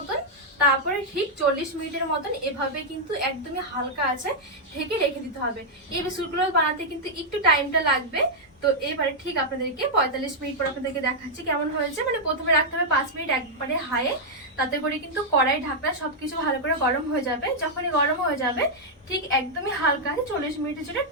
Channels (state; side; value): normal; both; correlation -0.04